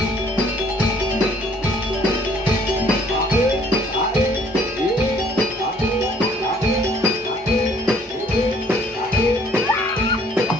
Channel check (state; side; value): normal; both; correlation 0.60